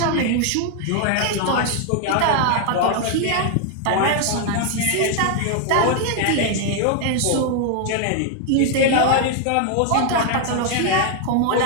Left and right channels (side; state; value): both; different; correlation 0.00